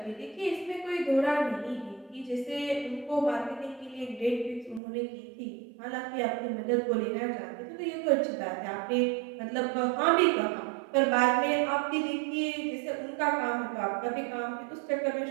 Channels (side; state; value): left; drops out; at 4.8 s